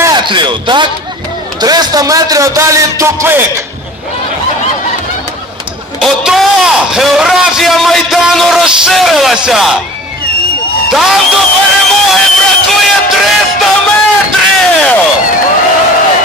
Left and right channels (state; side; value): normal; both; correlation 0.43